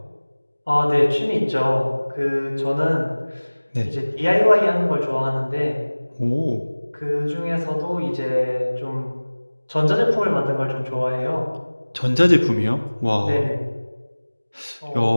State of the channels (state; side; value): inverted; both; correlation -1.00